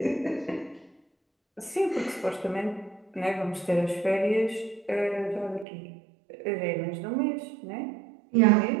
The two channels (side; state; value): left; drops out; at 5.7 s